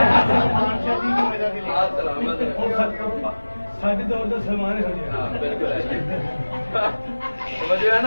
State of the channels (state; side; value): inverted; both; correlation -1.00